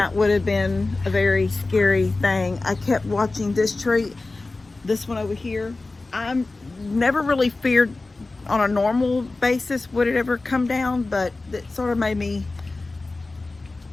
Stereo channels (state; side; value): quieter; right; 3.3 dB